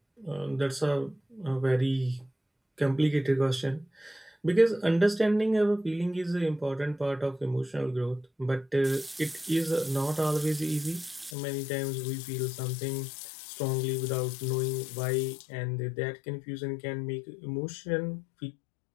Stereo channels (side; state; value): right; drops out; at 11.4 s